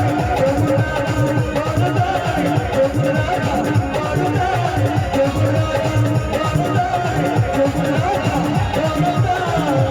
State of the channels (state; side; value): identical; both; correlation 1.00